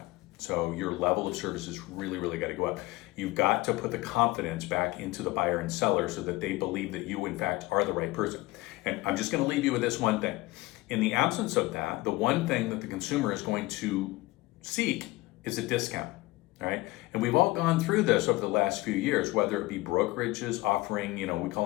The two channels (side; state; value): right; quieter; 20.4 dB